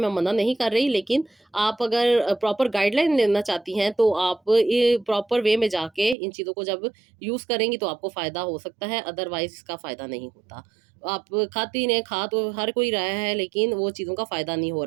मना नहीं कर रही, लेकिन आप अगर प्रॉपर गाइडलाइन लेना चाहती हैं, तो आप ये प्रॉपर वे में जाके इन चीज़ों को जब यूज़ करेंगी, तो आपको फ़ायदा हो सकता है, अदरवाइज़ इसका फ़ायदा नहीं होता। आप खाती रहें, खा तो हर कोई रहा है, लेकिन वो चीज़ों का फ़ायदा नहीं हो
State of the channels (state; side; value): drops out; left; at 6.2 s